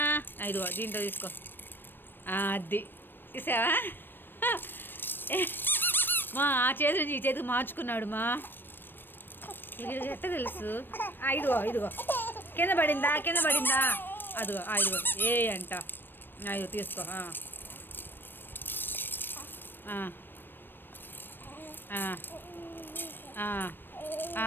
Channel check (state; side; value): late; right; 0.096 ms